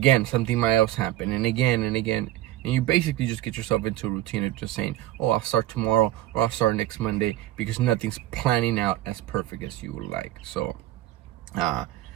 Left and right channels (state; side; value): quieter; left; 14.6 dB